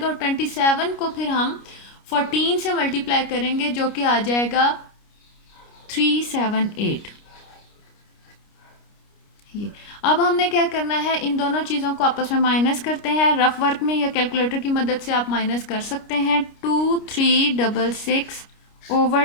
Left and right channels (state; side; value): late; right; 29 ms